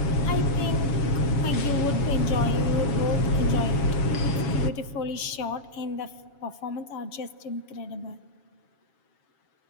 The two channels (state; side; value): late; right; 7.0 ms